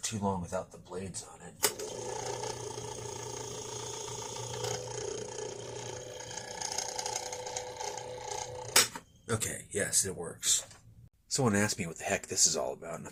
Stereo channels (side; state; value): both; identical; correlation 1.00